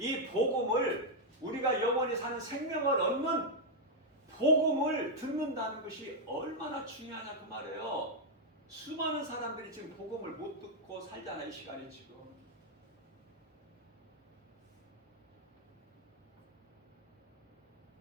복음을, 우리가 영원히 사는 생명을 얻는 복음을 듣는다는 것이 얼마나 중요하냐 그 말이에요. 수많은 사람들이 지금 복음을 못 듣고 살잖아. 이 시간에 지금.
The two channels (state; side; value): normal; both; correlation -0.02